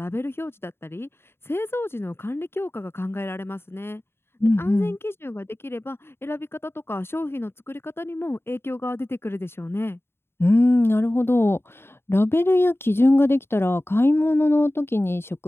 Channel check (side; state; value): right; late; 0.11 ms